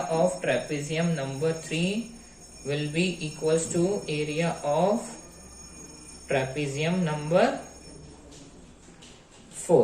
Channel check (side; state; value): both; identical; correlation 1.00